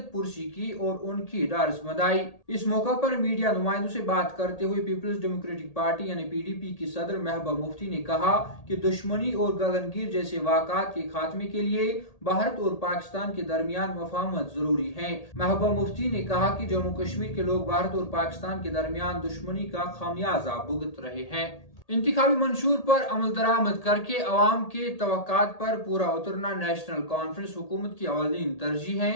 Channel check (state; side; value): late; right; 1.8 ms